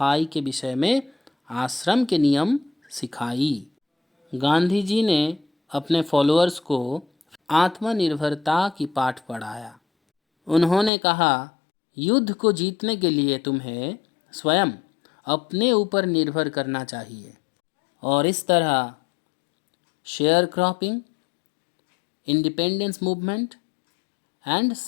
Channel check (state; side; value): drops out; right; at 10.9 s